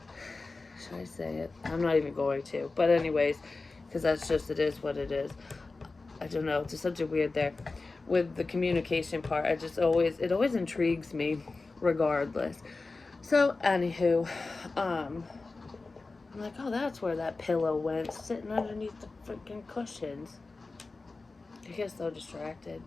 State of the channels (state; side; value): quieter; right; 3.6 dB